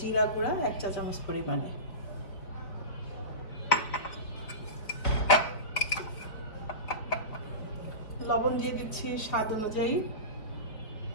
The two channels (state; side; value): late; right; 4.4 ms